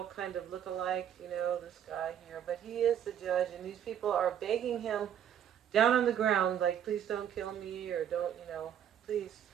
kind of look-alike, this guy here. But he is the judge, and these people are begging him down on the ground, like, please don't kill me, or don't, please.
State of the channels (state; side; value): quieter; left; 9.5 dB